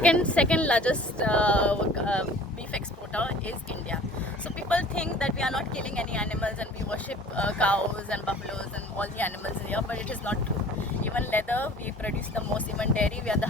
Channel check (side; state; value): both; normal; correlation 0.47